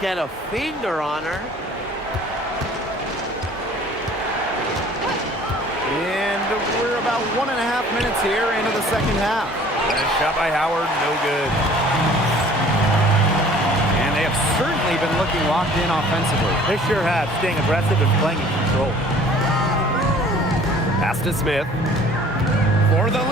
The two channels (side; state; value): both; normal; correlation 0.51